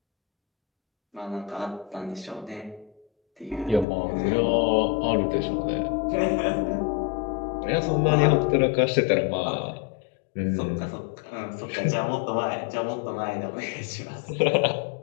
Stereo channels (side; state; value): right; drops out; at 3.9 s